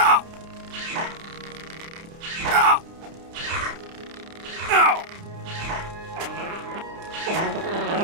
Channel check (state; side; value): late; left; 30 ms